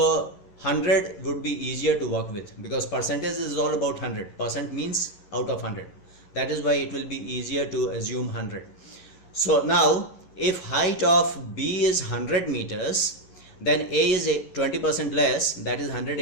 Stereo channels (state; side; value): late; right; 11 ms